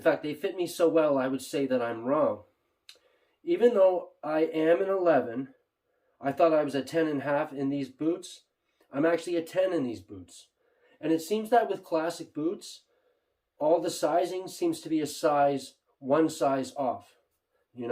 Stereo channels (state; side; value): identical; both; correlation 1.00